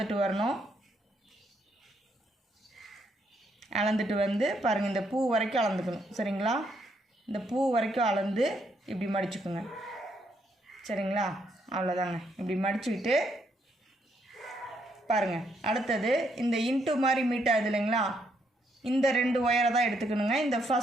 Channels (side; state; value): both; normal; correlation 0.74